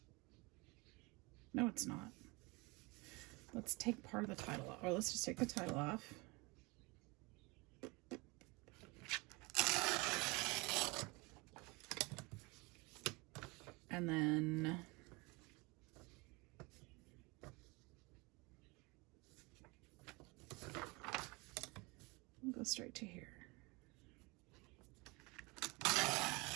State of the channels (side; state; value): left; quieter; 26.3 dB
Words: No, it's not. Let's take part of the title off, or let's just take the title off. And then go straight to here.